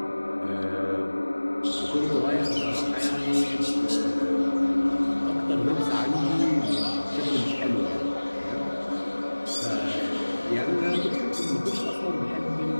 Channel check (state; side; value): inverted; both; correlation -1.00